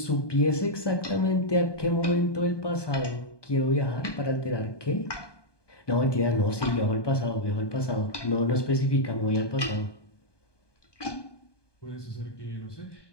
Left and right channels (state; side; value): late; right; 1.2 ms